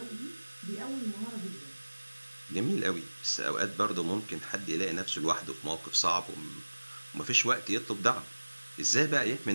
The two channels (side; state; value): both; inverted; correlation -1.00